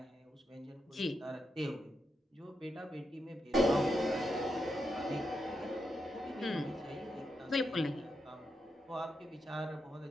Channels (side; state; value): both; normal; correlation 0.84